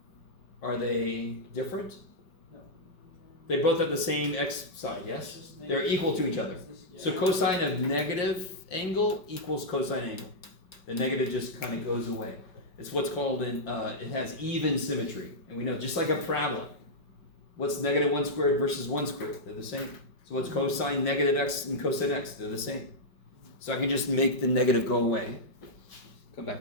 Are they different? No. They both have the same x side, yes? They're equal to each other. So cosine of negative angle equals cosine angle. The negative just kind of goes away. It's what's called it has even symmetry. And we know, just like a parabola, what's negative 1 squared versus 1 squared? They're the same. So what's cosine negative x and cosine x? They're the same. So I can just make the negative go away. Come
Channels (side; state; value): right; late; 5.3 ms